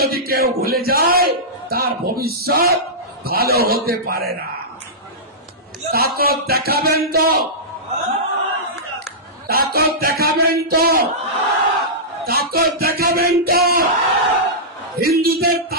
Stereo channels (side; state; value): both; normal; correlation -0.15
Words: কেউ ভুলে যায় তার ভবিষ্যৎ ভালো হতে পারে না। তাকত দেখাবেন তো, তাকত দেখাবেন তো, তাকত দেখাবেন তো। হিন্দুদের